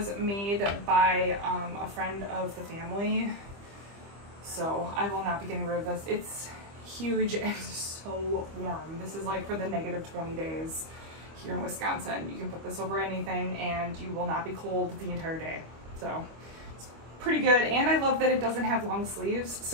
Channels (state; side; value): late; left; 25 ms